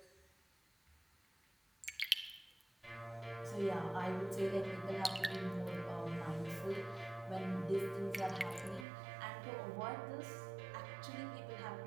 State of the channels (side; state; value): left; drops out; at 8.8 s